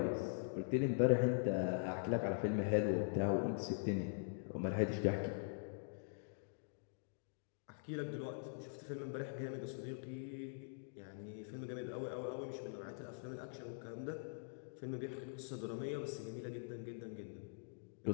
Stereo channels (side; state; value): right; silent; digital silence